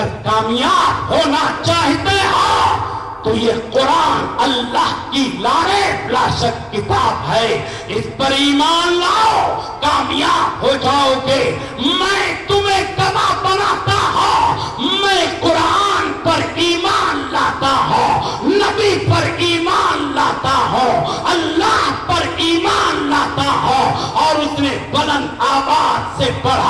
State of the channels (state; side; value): identical; both; correlation 1.00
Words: کامیاب ہونا چاہتے ہو تو یہ قرآن اللہ کی لانے لا شک کتاب ہے، اس پر ایمان لاؤ، کامیاب ہو جاؤ گے۔ میں تمہیں گواہ بناتا ہوں، میں قرآن پر ایمان لاتا ہوں، نبی پر ایمان لاتا ہوں، اللہ پر ایمان لاتا ہوں۔ اور اس نے بلند آواز سے